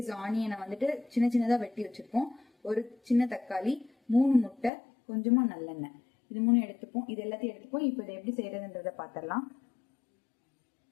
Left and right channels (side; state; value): right; drops out; at 4.7 s